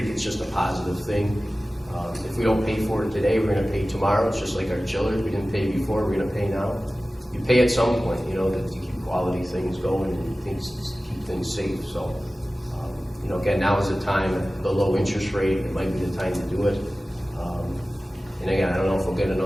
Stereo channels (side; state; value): both; normal; correlation 0.96